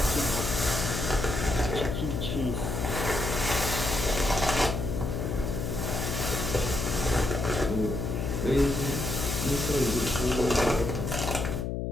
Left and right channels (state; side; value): noise; left; hum, 2 dB below the sound